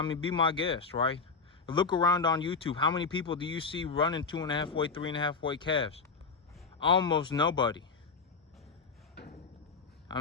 mean, be my guest, right? Look around on YouTube. How many people do you see running 2.5 weight, 3.5 weight calves? Almost nobody. I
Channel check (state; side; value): quieter; right; 4.8 dB